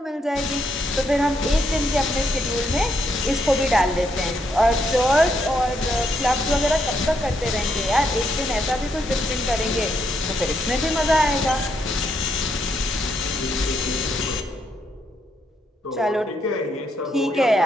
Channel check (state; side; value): normal; both; correlation 0.77